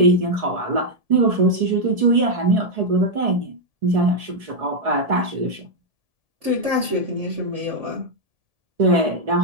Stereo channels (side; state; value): left; late; 1.7 ms